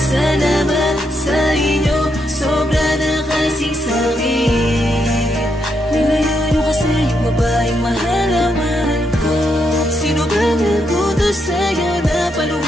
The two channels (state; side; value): normal; both; correlation 0.80